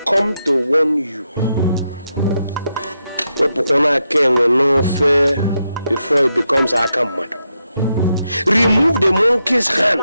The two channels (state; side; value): inverted; both; correlation -0.84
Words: come to warn you. Before it becomes Akamado. Remove the monkey's